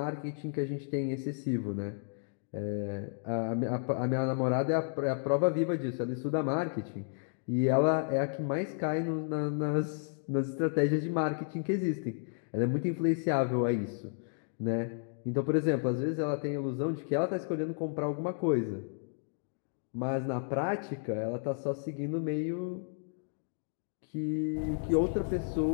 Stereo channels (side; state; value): right; silent; digital silence